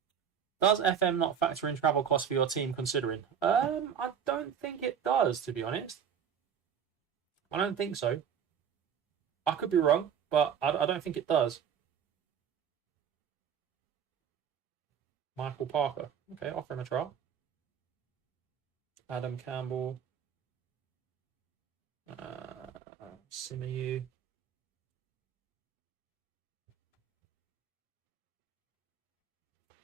Does FM not factor in travel costs for your team considering? I don't think it does, to be honest. I don't think so. I could be wrong, but I don't think it does. Michael Parker. Okay, offer him a trial. Adam Campbell. Simeyu.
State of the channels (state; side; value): quieter; left; 8.0 dB